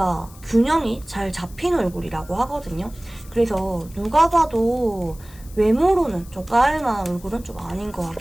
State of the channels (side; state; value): left; noise; hiss, 22 dB below the sound